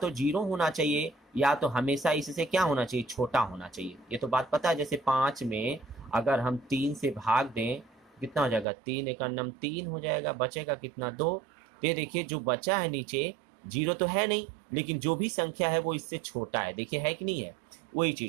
0 होना चाहिए या तो हमेशा इससे क्या होना चाहिए, छोटा होना चाहिए। ये तो बात पता है। जैसे 5 में अगर हम 3 से भाग दें कितना हो जाएगा, 3 एक नम 3 हो जाएगा, बचेगा कितना, 2। ये देखिए जो बचा है नीचे 0 तो है नहीं, लेकिन जो भी संख्या है वो इससे छोटा है, देखिए है कि नहीं है, वही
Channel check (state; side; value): drops out; left; at 8.7 s